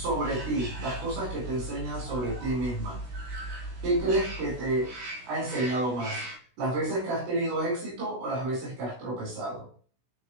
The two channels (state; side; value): late; left; 16 ms